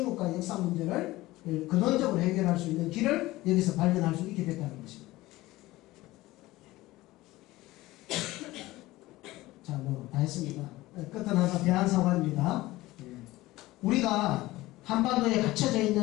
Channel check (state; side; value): quieter; right; 18.3 dB